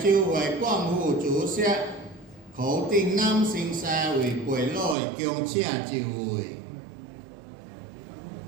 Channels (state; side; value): drops out; left; at 5.0 s